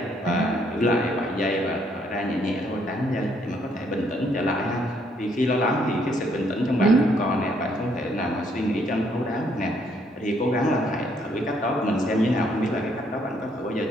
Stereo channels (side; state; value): both; normal; correlation 0.69